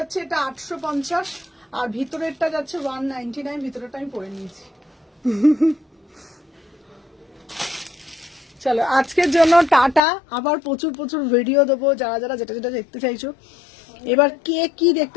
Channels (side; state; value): right; drops out; at 10.0 s